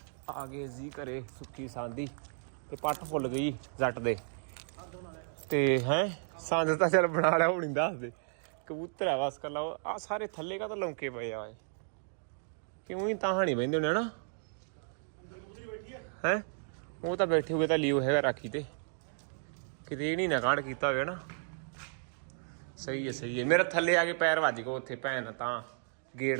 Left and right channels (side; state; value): left; silent; digital silence